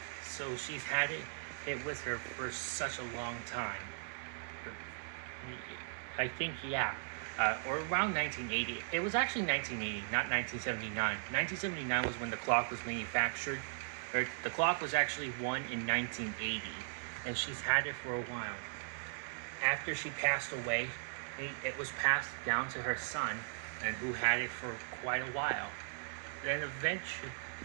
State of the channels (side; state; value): left; silent; digital silence